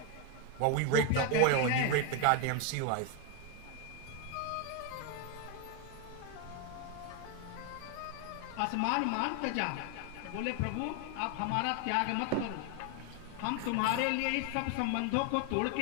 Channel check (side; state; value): both; different; correlation 0.01